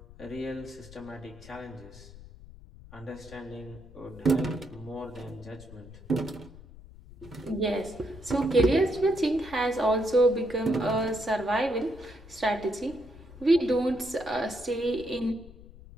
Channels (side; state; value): left; noise; rumble, 18 dB below the sound